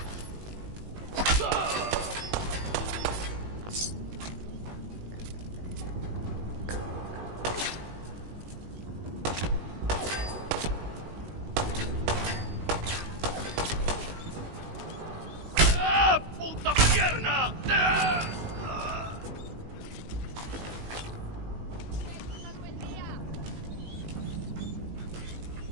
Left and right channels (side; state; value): left; late; 19 ms